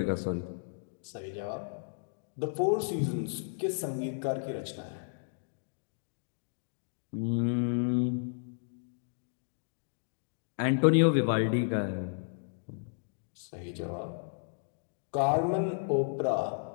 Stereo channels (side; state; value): right; silent; digital silence